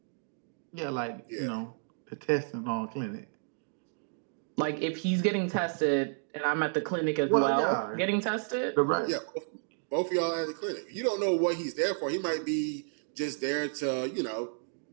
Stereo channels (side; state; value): left; silent; 57 dB below the other